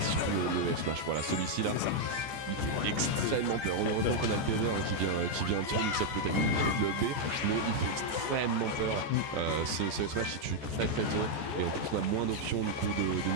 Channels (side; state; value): left; late; 14 ms